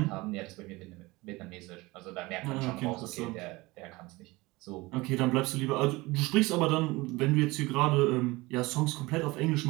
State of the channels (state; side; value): quieter; left; 22.0 dB